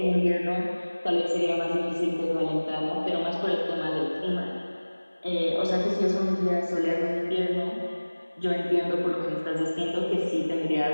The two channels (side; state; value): both; inverted; correlation -1.00